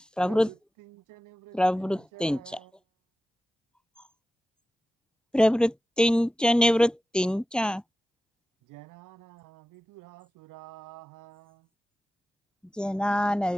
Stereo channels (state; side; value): normal; both; correlation 0.95